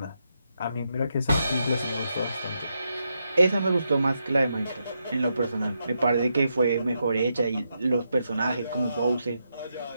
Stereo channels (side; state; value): both; inverted; correlation -0.83